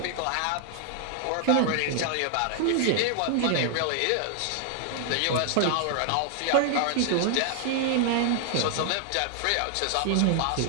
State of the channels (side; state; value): both; different; correlation 0.00